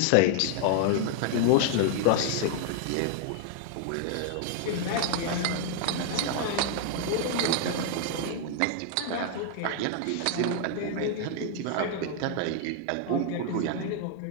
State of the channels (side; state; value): both; different; correlation 0.00